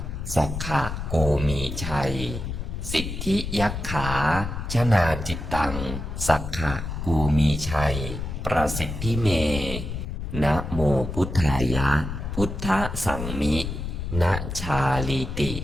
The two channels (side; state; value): left; noise; rumble, 6 dB below the sound